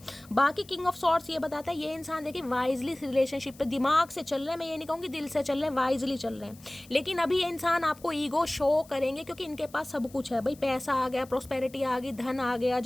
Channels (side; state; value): left; noise; hiss, 24 dB below the sound